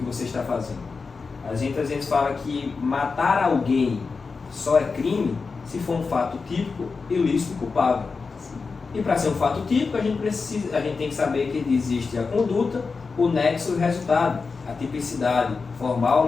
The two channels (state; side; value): quieter; right; 4.6 dB